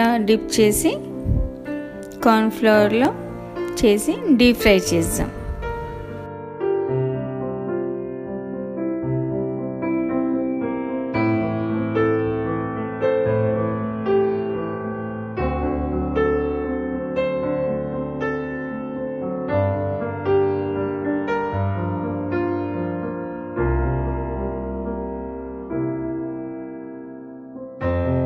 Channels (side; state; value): both; identical; correlation 1.00